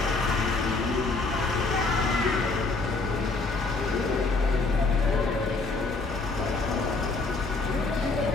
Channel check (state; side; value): quieter; right; 3.7 dB